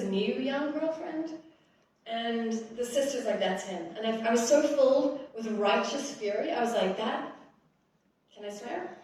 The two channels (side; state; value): both; identical; correlation 1.00